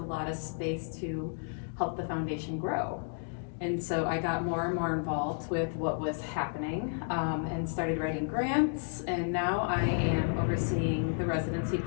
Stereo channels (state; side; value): silent; right; 56 dB below the other